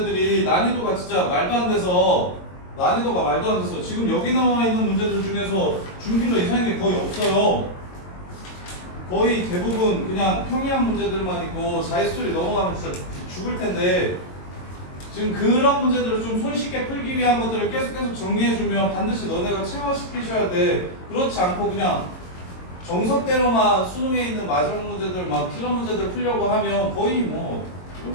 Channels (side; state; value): right; late; 22 ms